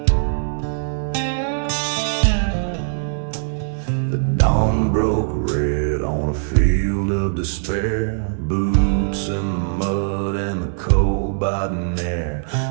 The dawn broke red on a field of despair. Boots in the mud and the cold biting air.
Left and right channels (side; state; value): left; silent; digital silence